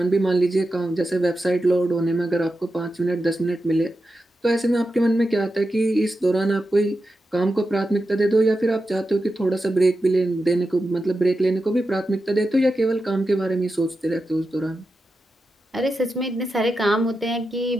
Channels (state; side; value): normal; both; correlation 0.90